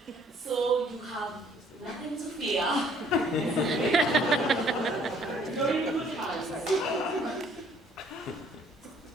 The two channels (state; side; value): normal; both; correlation 0.61